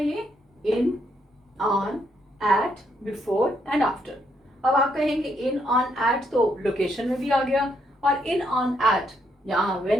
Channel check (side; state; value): both; normal; correlation 0.74